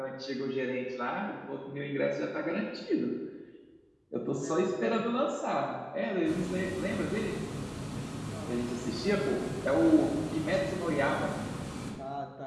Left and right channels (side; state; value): both; identical; correlation 1.00